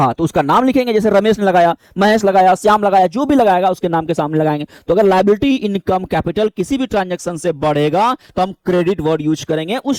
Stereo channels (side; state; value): both; identical; correlation 1.00